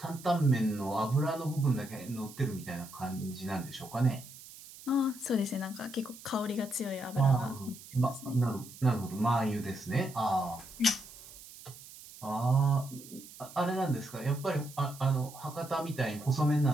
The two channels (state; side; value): noise; right; hiss, 17 dB below the sound